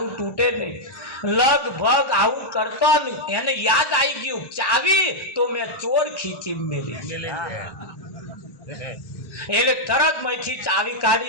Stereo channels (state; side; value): late; right; 1.1 ms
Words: તૂટે નહીં. લગભગ આવું કરતો એને યાદ આવી ગયું ચાવી તો મેં ચોર ખીચી મેલી એટલે તરત માંથી ચાવી